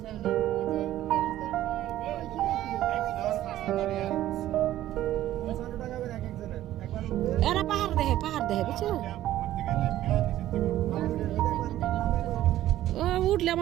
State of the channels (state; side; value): quieter; left; 13.7 dB